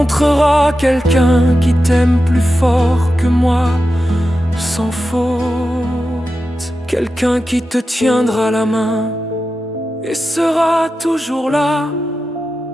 quelqu'un qui t'aime plus fort que moi, sans faute. Quelqu'un qui te tiendra la main et sera toujours là.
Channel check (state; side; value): normal; both; correlation 0.91